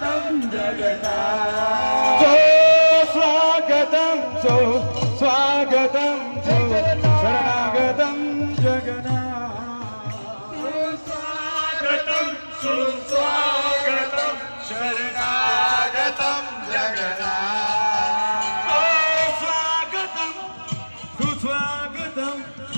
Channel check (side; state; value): both; inverted; correlation -1.00